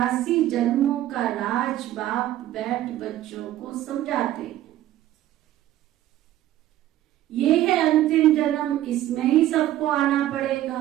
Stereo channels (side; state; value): left; quieter; 13.7 dB